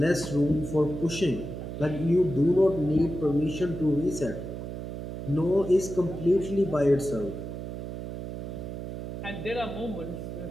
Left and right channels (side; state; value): right; noise; hum, 7 dB below the sound